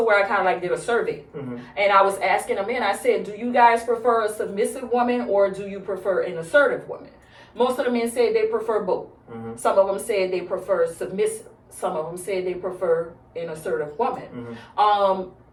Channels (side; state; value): both; identical; correlation 1.00